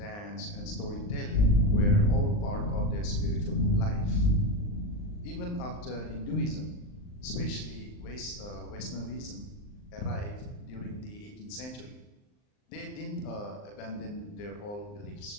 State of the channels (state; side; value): late; right; 39 ms